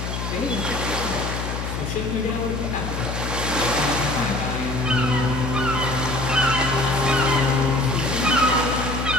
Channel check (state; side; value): noise; left; hum, 4 dB below the sound